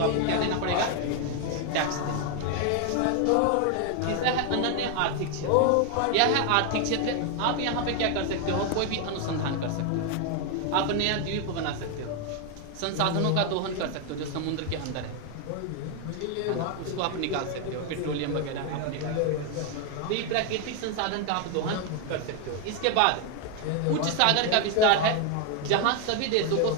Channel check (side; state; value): both; different; correlation 0.01